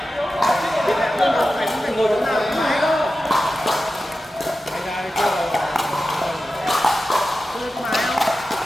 Thì lại hơn cả phải ngồi chỗ nào cũng máy đâu. Tôi có máy không?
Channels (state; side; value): normal; both; correlation 0.93